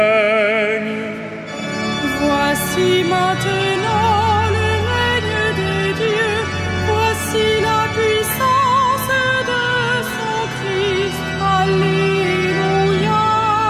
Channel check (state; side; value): identical; both; correlation 1.00